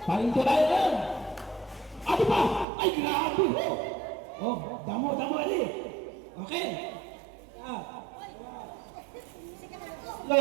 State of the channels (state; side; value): drops out; left; at 2.7 s